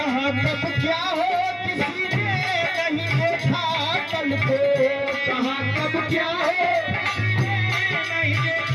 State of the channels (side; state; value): both; identical; correlation 1.00